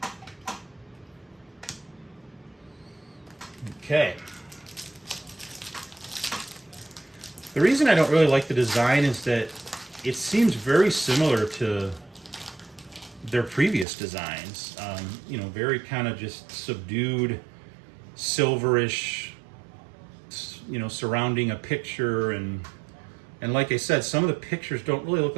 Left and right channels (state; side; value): drops out; left; at 13.9 s